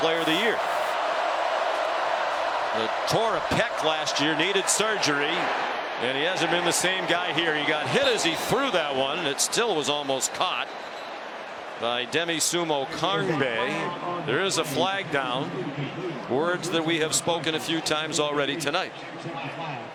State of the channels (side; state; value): both; identical; correlation 1.00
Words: of the year. Tore a pec last year, needed surgery, and he hasn't been the same guy here. He got hit as he threw that one, and it still was almost caught. by Demi Sumo Karnbe. There is a flag down. Words that we have spoken a few times already tonight.